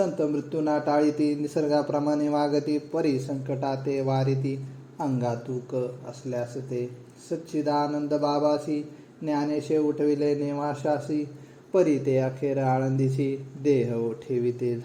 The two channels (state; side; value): identical; both; correlation 1.00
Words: मृत्यूना टाळीती निसर्गाप्रमाणे वागती. परी संकटाते वारिती अंगातूक असल्यास ते. सच्चिदानंद बाबासी ज्ञानेशे उठविले नेवाशासी. परी ते अखेर आळंदीसी देह ठेविते